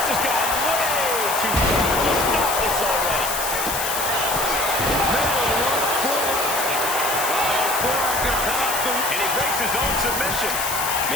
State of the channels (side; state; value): left; noise; hiss, 3 dB below the sound